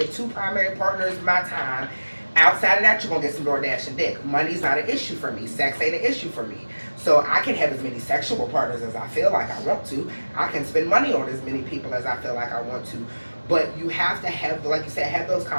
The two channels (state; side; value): inverted; both; correlation -1.00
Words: 2 primary partners my time. Outside of that, you're gonna get some DoorDash and dick. Money's not an issue for me. Sex ain't an issue for me. So I can have as many sexual partners as I feel like I want to. I can spend money on as many people as I feel like I want to. But you have to have, like you said, have those